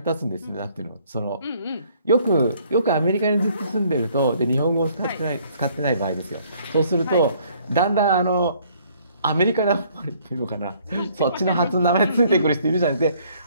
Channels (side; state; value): both; inverted; correlation -0.62